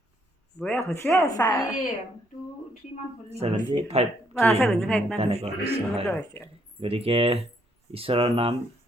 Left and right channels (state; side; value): normal; both; correlation 0.70